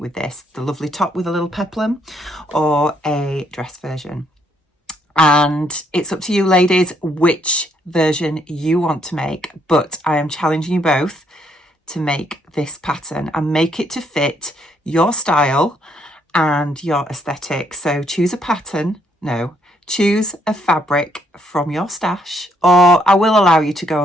with this: the lovely top with a little peplum, or a dress version. And it's up to you ladies which version you want to make, but I am challenging you both to make this pattern and make it to fit your style and your aesthetic. So choose a pattern, choose a fabric from your stash, or I will allow you to go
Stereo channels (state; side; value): normal; both; correlation 0.72